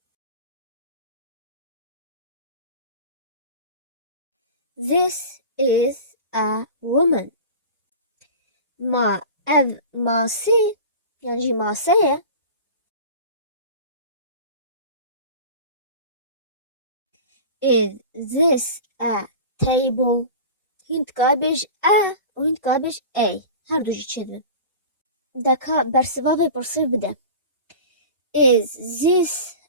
This is a woman. Ev masê yan jî mase ye. Is this a table? Hûn dikare bêj a û hûn dikare bêj a. Her du jî çêdibin. Deka bersivavê pirsê bide. Is this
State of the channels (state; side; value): inverted; both; correlation -0.35